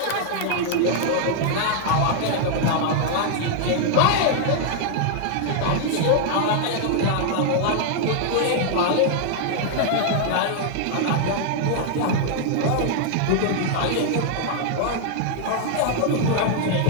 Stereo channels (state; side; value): different; both; correlation 0.00